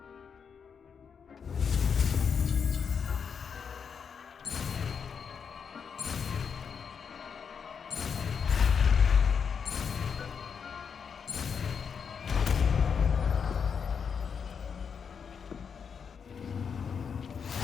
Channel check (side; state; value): right; quieter; 6.6 dB